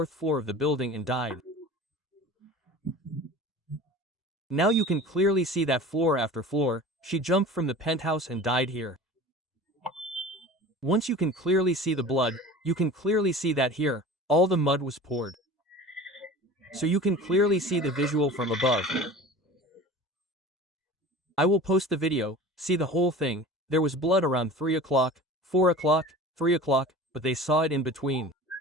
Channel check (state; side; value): normal; both; correlation 0.38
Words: floor of the building and died. Now you can clearly see that floor after floor, she jumped from the penthouse and died here. Once you can clearly see the blood, you can clearly see that here, all the mud was poured. So you can clearly see the visual from above. I will post the video, see the whole thing. There was blood around 3 o'clock, 4 o'clock, 3 o'clock, but they saw it in between.